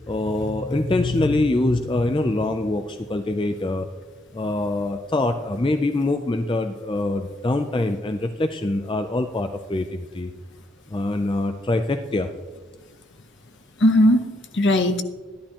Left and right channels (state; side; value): normal; both; correlation 0.76